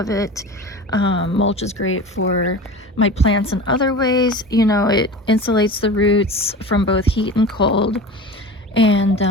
it. Mulch is great for my plants in other ways. You know, it insulates the roots from both heat and cold. And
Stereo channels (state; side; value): normal; both; correlation 0.34